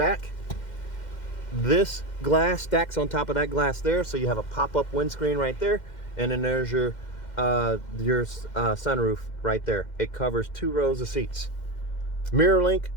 This glass stacks on top of that glass there, so you have a pop-up windscreen right there, and then there's your sunroof right there. It covers 2 rows of seats. MirrorLink,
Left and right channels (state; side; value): late; right; 2.1 ms